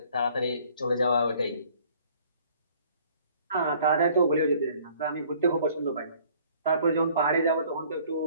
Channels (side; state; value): both; inverted; correlation -0.57